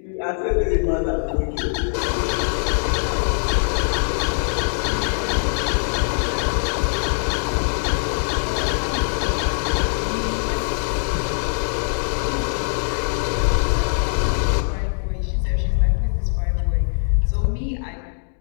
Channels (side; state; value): right; silent; 64 dB below the other